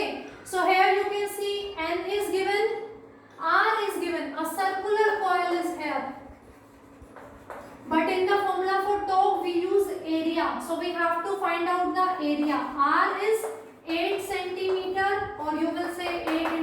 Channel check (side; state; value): both; identical; correlation 1.00